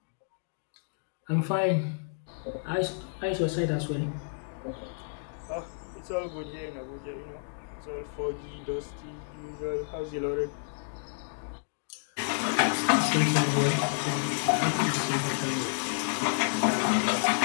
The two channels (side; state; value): right; silent; digital silence